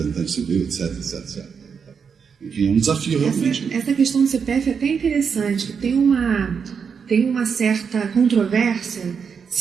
civil, etc. Enfim, é um desafio realmente. Essa questão do CPF é até interessante, que tem uma certa controvérsia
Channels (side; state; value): left; quieter; 6.4 dB